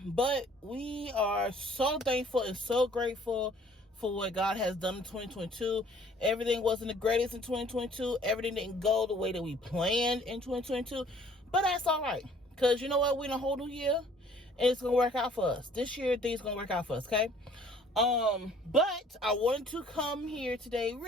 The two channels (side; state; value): both; normal; correlation 0.57